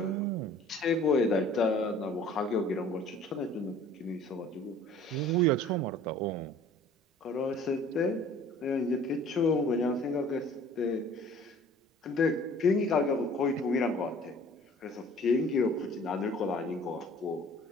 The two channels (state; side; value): normal; both; correlation 0.50